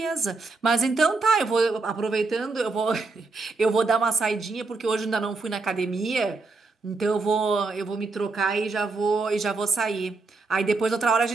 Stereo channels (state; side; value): quieter; left; 3.8 dB